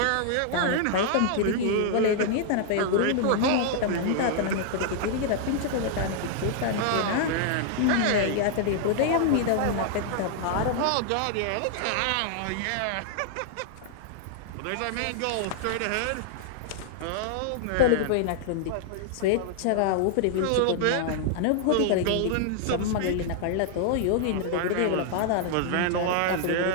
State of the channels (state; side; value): different; both; correlation -0.01